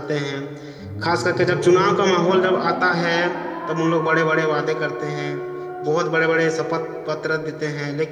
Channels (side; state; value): both; identical; correlation 1.00